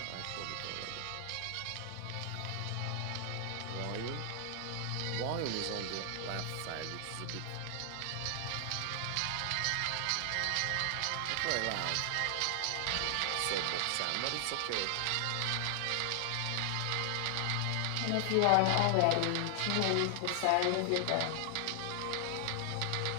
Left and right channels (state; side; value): different; both; correlation 0.00